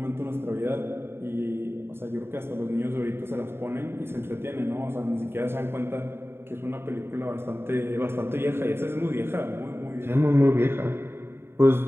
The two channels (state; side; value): late; left; 0.11 ms